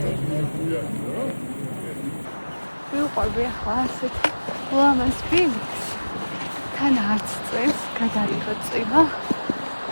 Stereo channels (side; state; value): both; inverted; correlation -1.00